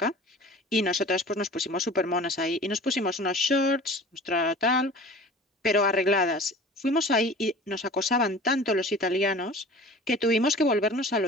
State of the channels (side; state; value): both; normal; correlation 0.41